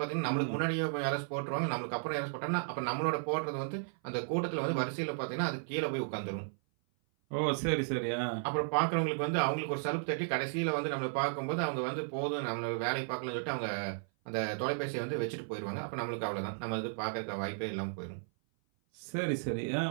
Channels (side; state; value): left; silent; 55 dB below the other